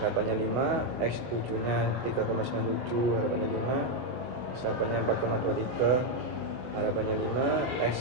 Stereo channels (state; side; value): late; left; 24 ms